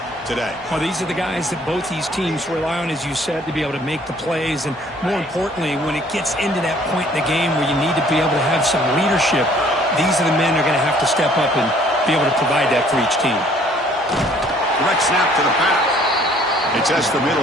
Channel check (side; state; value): both; normal; correlation 0.58